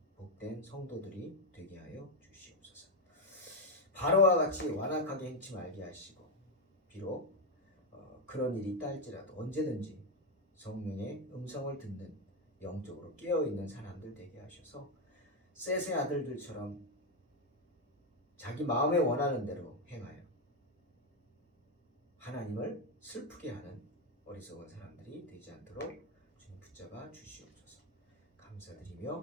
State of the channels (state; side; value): normal; both; correlation 0.05